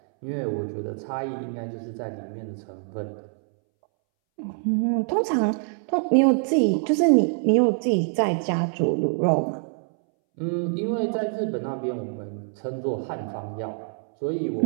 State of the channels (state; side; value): silent; left; 62 dB below the other